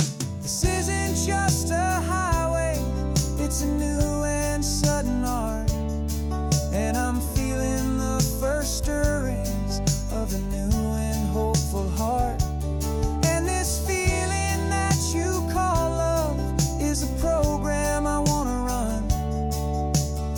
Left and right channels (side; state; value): both; identical; correlation 1.00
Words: This isn't just a highway, it's a new and sudden art, and I'm feeling the first stirrings of a new and hopeful heart. And this feeling that you call love is a program I wanna run